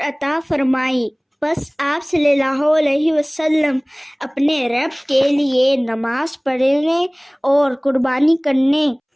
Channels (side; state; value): both; identical; correlation 1.00